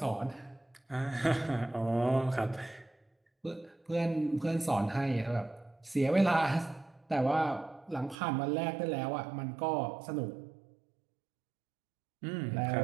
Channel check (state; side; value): drops out; left; at 8.2 s